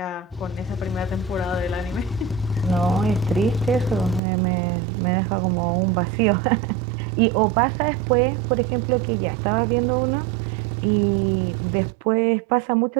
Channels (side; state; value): left; drops out; at 4.2 s